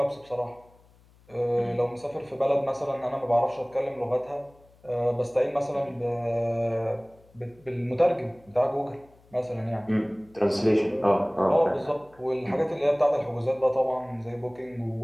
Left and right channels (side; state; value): left; noise; hum, 29 dB below the sound